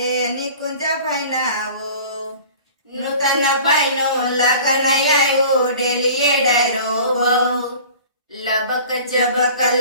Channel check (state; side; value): inverted; both; correlation -0.43